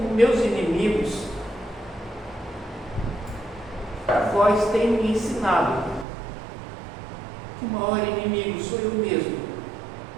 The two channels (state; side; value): drops out; left; at 6.1 s